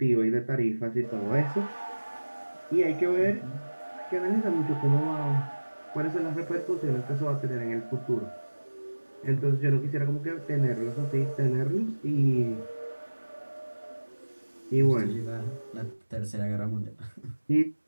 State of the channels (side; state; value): both; inverted; correlation -1.00